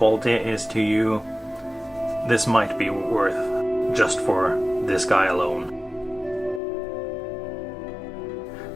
is to you, this might be worth just for this guy alone.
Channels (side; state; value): right; drops out; at 6.6 s